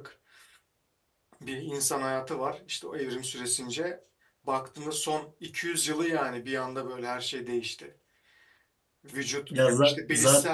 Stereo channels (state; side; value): identical; both; correlation 1.00